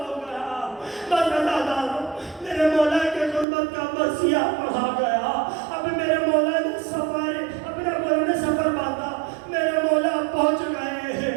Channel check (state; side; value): drops out; left; at 3.5 s